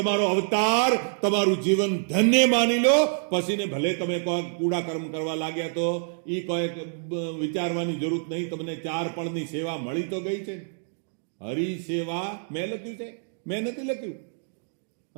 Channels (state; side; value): silent; left; digital silence